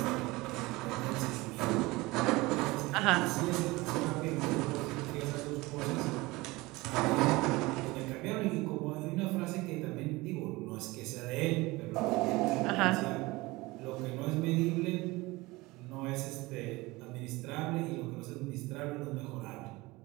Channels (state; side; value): quieter; left; 21.7 dB